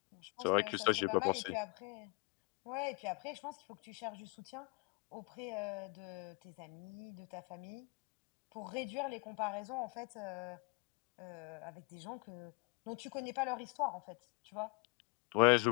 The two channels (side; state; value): right; quieter; 25.9 dB